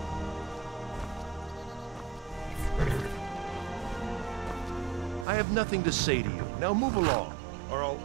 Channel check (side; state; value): left; drops out; at 5.2 s